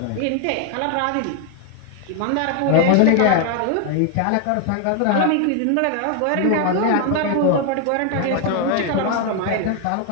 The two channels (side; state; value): both; different; correlation 0.01